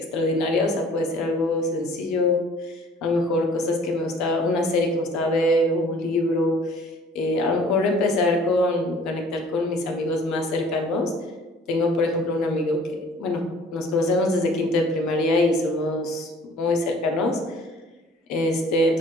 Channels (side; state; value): both; normal; correlation 0.52